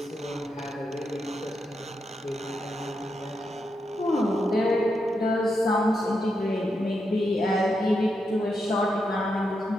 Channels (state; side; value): normal; both; correlation 0.84